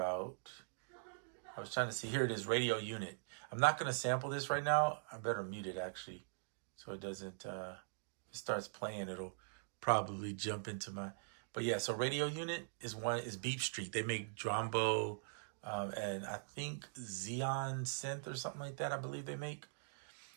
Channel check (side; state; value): left; silent; digital silence